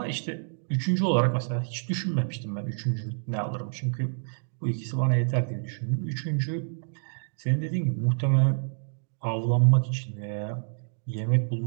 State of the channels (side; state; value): left; silent; digital silence